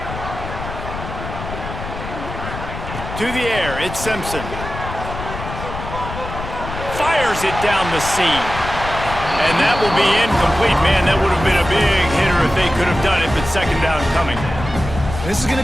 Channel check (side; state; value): left; noise; rumble, 9 dB below the sound